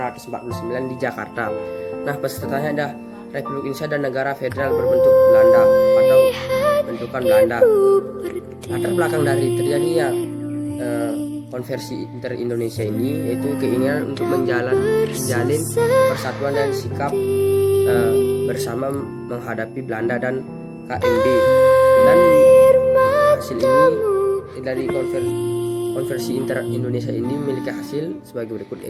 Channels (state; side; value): identical; both; correlation 1.00